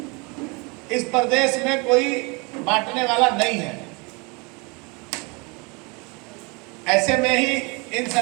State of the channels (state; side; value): quieter; left; 29.6 dB